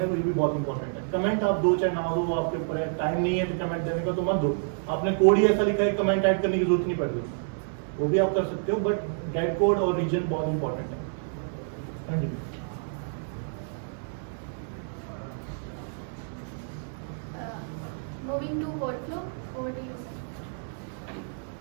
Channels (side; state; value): left; silent; digital silence